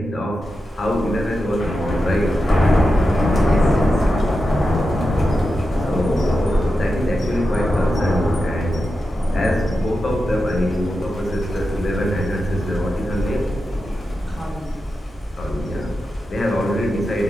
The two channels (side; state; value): both; normal; correlation 0.90